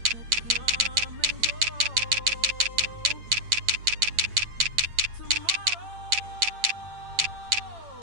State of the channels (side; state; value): left; late; 8.9 ms